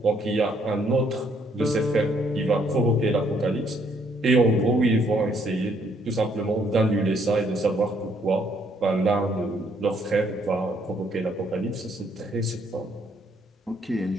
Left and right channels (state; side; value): normal; both; correlation 0.68